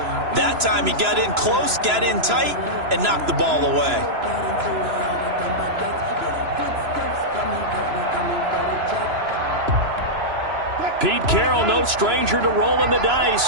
That time he got in close, got in tight, and knocked the ball away. Pete Carroll, no stranger to rolling the dice.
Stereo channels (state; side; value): late; left; 3.0 ms